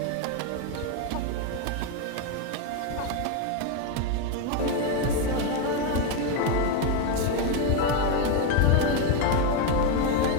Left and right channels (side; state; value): both; different; correlation 0.02